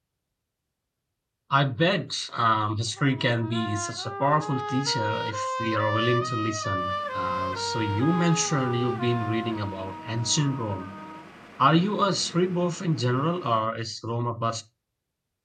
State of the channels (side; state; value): both; identical; correlation 1.00